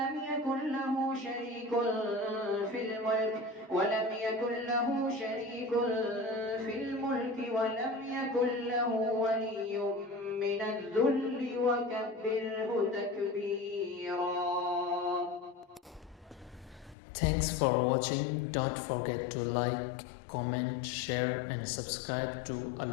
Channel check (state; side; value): drops out; right; at 16.9 s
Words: يكن له شريك في الملك ولم يكن له ولي من الذل وكبره تكبيرا. Thanks for watching. Don't forget to like, comment, share and subscribe to